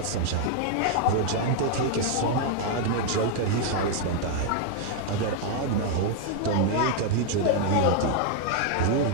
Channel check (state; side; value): different; both; correlation 0.00